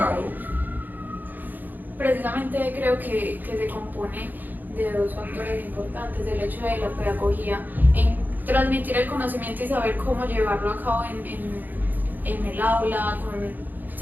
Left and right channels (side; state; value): left; late; 0.086 ms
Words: Precisamente creo que se compone de dos factores importantes: el hecho de la pedagogía en transmitir el conocimiento y saber cómo llevarlo a cabo en el aula.